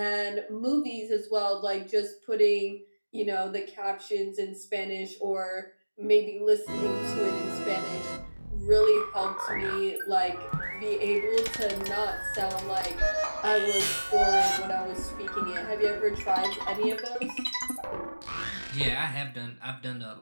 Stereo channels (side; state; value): both; inverted; correlation -1.00